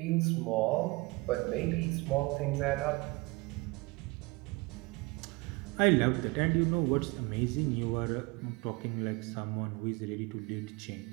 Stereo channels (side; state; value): left; quieter; 24.5 dB